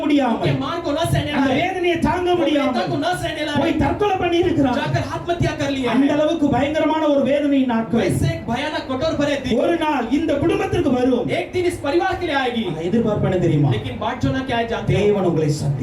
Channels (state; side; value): identical; both; correlation 1.00